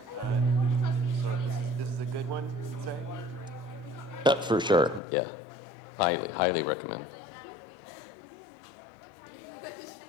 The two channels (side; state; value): right; drops out; at 5.0 s